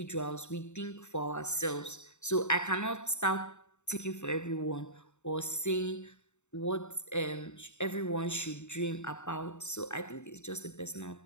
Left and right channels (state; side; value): late; right; 0.83 ms